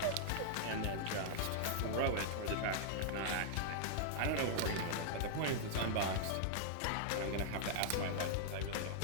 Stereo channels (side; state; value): both; different; correlation -0.01